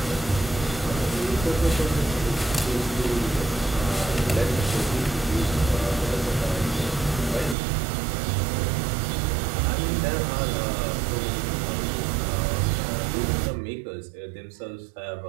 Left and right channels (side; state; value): left; drops out; at 7.6 s